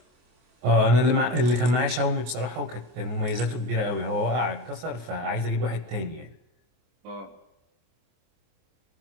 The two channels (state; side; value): late; left; 25 ms